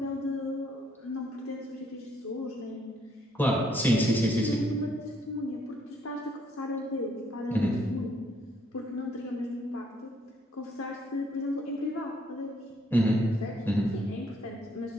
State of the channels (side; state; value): both; normal; correlation 0.69